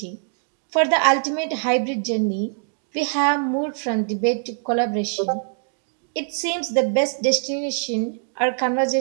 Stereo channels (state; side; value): silent; left; digital silence